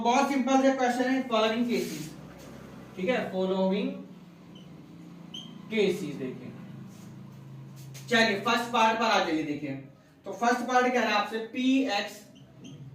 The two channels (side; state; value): both; identical; correlation 1.00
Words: सिंपल से क्वेश्चन है, फॉलोइंग केसेस, ठीक है, फॉलोइंग केसेस। देखिए चलिए फर्स्ट पार्ट पर आ जाइए। देखिए तो फर्स्ट पार्ट कह रहा है आपसे P X